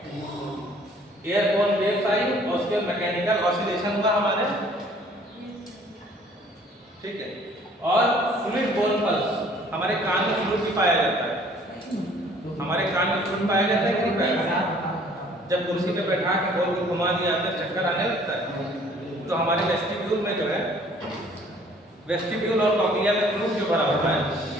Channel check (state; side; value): normal; both; correlation 0.56